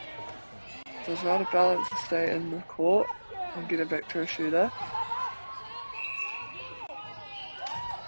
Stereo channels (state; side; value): inverted; both; correlation -1.00